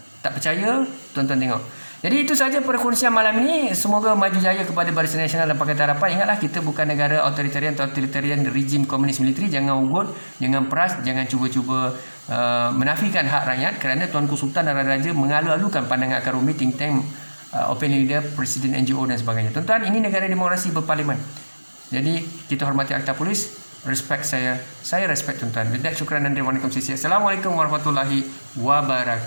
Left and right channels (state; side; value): inverted; both; correlation -1.00